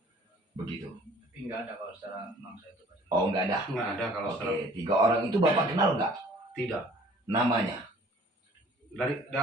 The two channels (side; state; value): both; normal; correlation 0.53